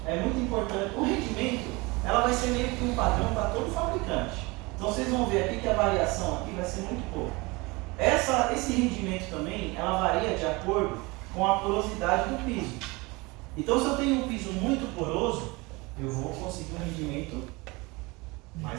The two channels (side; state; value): left; quieter; 24.8 dB